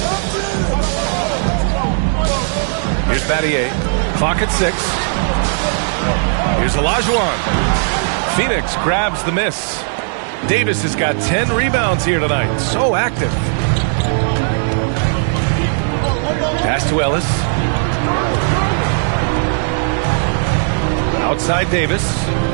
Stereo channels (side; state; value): left; silent; 63 dB below the other